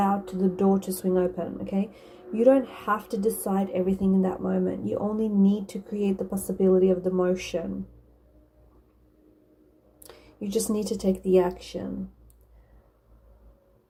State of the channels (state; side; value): identical; both; correlation 1.00